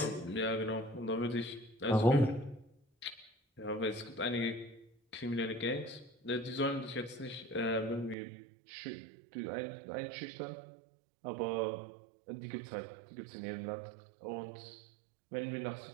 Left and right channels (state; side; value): drops out; left; at 8.2 s